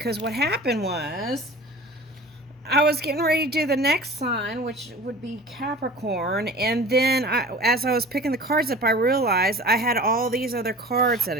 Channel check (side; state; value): both; normal; correlation 0.40